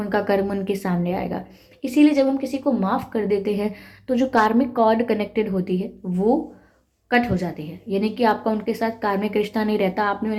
कर्म उनके सामने आएगा। इसीलिए जब हम किसी को माफ़ कर देते हैं तो जो कार्मिक कॉर्ड कनेक्टेड होती है वो कट हो जाती है, यानी कि आपका उनके साथ कार्मिक रिश्ता नहीं रहता। आपने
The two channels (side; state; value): both; identical; correlation 1.00